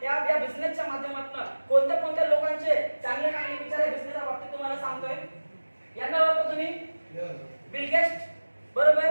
या बिझनेसच्या माध्यमातून कोणत्या लोकांचे चांगले विचार आहे बिझनेसच्या बाबतीत तुम्हाला सांगतोय. यांना ओळखता तुम्ही, बिल गेट्स, बरोबर,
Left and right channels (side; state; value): both; inverted; correlation -1.00